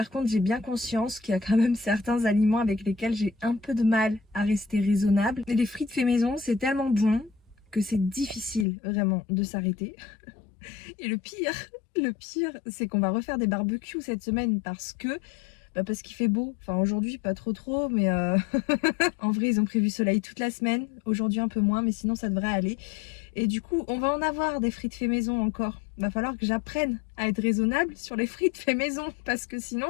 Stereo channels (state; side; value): drops out; right; at 8.7 s